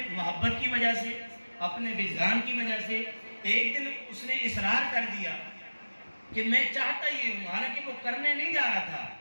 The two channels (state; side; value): inverted; both; correlation -1.00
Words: محبت کی وجہ سے، اپنے وجدان کی وجہ سے ایک دن اس نے اصرار کر دیا کہ میں چاہتا یہ ہوں، حالانکہ وہ کرنے نہیں جا رہا تھا،